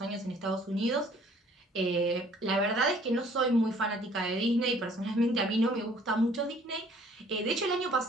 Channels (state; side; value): normal; both; correlation 0.57